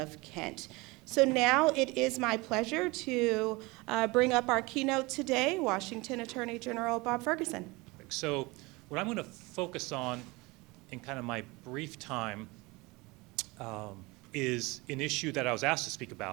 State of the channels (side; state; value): left; quieter; 24.0 dB